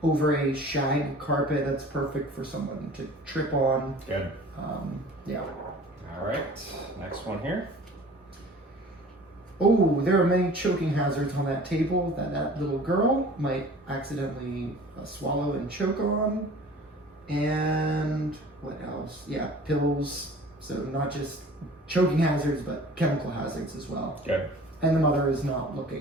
over a shag carpet. That's perfect for someone to trip on. Good. Yeah. All right, next one here. Oh, there are many choking hazards on that table that little girl might accidentally swallow and choke on. And what else? Yeah, pills. So not just choking hazards, but chemical hazards as well. Good. And the mother is not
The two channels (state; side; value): normal; both; correlation 0.45